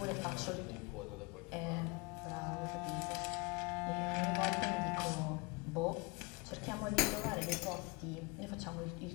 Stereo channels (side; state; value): right; quieter; 27.2 dB